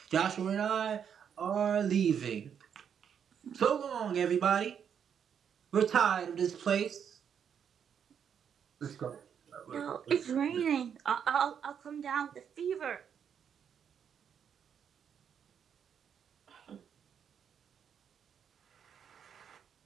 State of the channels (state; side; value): quieter; left; 7.9 dB